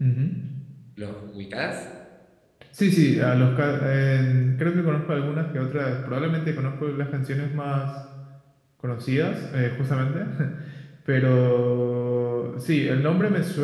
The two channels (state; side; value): identical; both; correlation 1.00